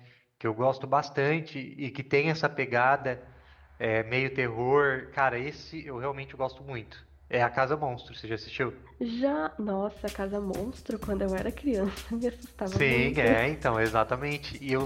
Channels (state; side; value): identical; both; correlation 1.00